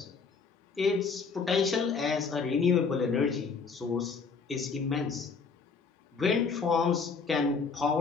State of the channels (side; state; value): right; quieter; 5.1 dB